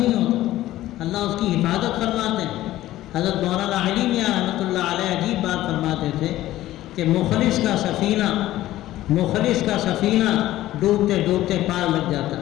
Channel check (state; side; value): quieter; right; 15.0 dB